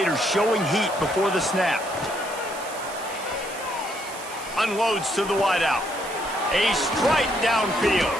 showing heat before the snap. Unloads to the wideout. A strike downfield.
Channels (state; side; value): noise; right; hiss, 14 dB below the sound